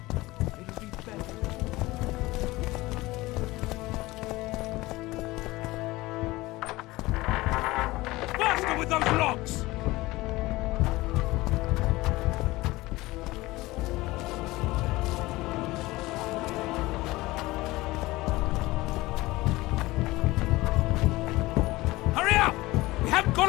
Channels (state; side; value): quieter; right; 19.7 dB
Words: With those locks! Hurry up! We haven't got